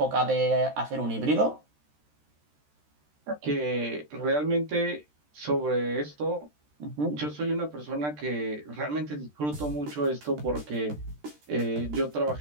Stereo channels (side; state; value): left; late; 13 ms